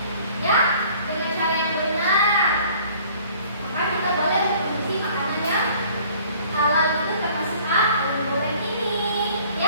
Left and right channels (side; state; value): both; inverted; correlation -0.53